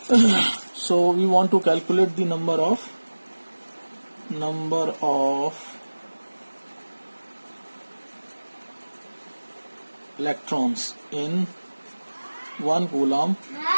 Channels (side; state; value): both; inverted; correlation -1.00